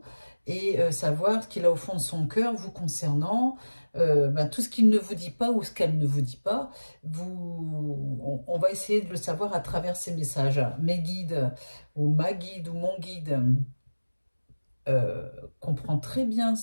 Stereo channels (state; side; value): inverted; both; correlation -1.00